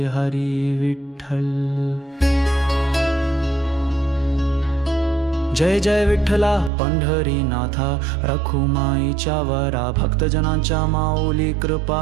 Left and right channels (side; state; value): left; drops out; at 6.7 s